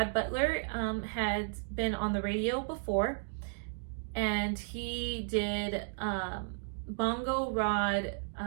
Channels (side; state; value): left; silent; digital silence